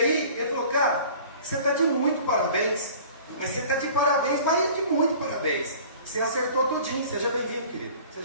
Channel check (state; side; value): inverted; both; correlation -0.45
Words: ele falou, cara, você está de muito parabéns, mas você está de parabéns, mas de muito parabéns, você acertou tudinho, seja bem-vindo, querido,